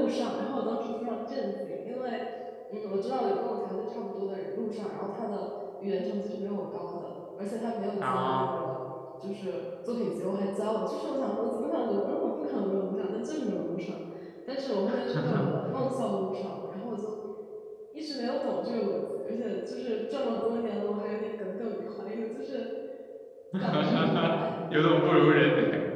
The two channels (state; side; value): identical; both; correlation 1.00